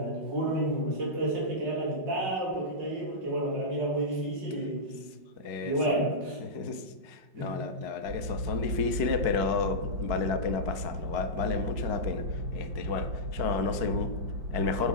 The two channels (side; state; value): left; late; 5.3 ms